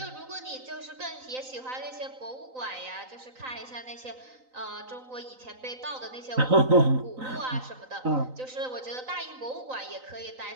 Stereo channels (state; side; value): late; left; 3.9 ms